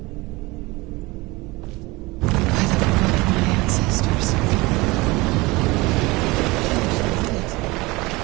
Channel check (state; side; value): quieter; left; 22.8 dB